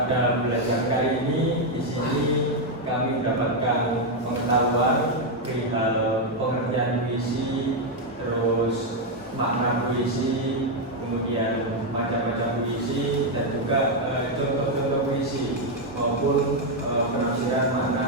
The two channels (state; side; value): normal; both; correlation 0.02